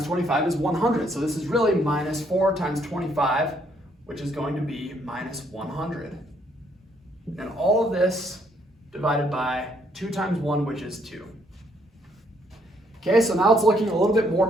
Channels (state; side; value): normal; both; correlation 0.69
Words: 25 is 100. So this is really -4 times 25, which is going to be -100. And all of this divided by 2 times 1, which is 2. Okay, so now it's looking a little bit more